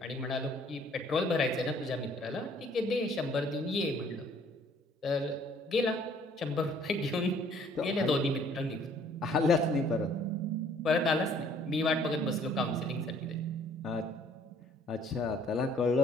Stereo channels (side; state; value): both; normal; correlation 0.59